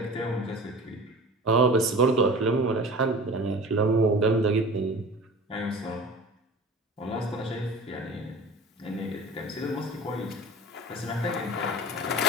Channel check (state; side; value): normal; both; correlation 0.38